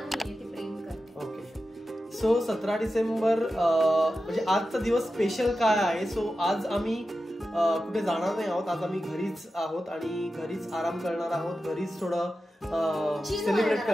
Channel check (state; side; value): normal; both; correlation 0.92